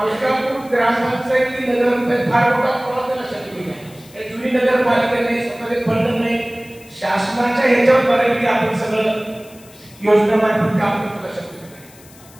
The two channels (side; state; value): left; noise; hiss, 24 dB below the sound